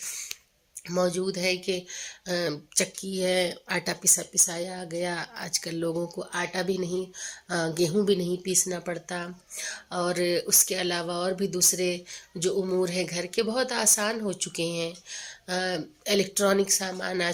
موجود ہے کہ چکی ہے، آٹا پسایا گیا۔ آج کل لوگوں کو آٹا بھی نہیں، گیہوں بھی نہیں پیسنا پڑتا، اور اس کے علاوہ اور بھی دوسرے جو امور ہیں گھر کے بہت آسان ہو چکے ہیں۔ الیکٹرانک سامان آ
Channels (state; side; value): identical; both; correlation 1.00